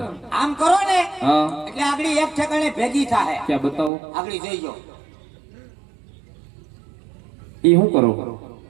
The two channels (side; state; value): left; drops out; at 3.9 s